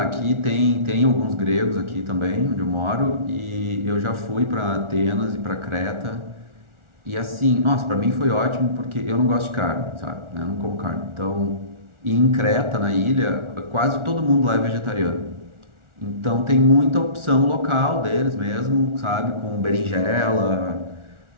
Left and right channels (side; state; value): left; late; 1.4 ms